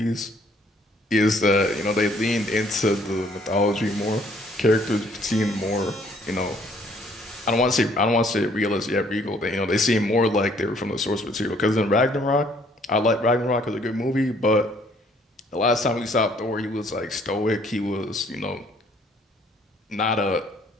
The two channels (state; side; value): normal; both; correlation 0.62